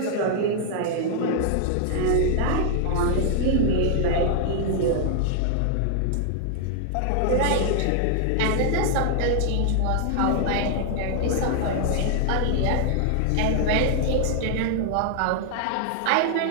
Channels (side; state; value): both; different; correlation -0.01